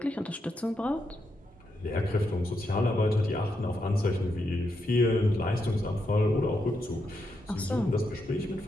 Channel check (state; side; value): normal; both; correlation 0.82